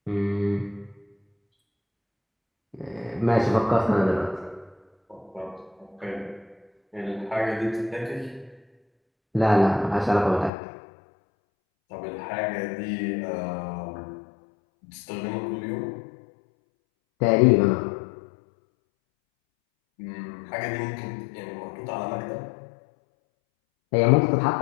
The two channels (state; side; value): drops out; right; at 10.5 s